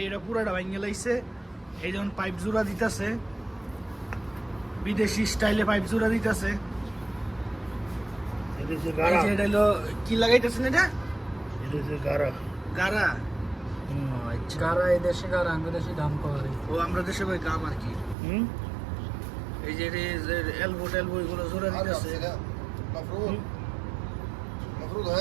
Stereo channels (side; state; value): left; drops out; at 18.2 s